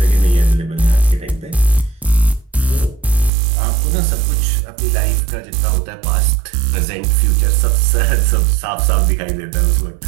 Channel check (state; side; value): drops out; left; at 3.3 s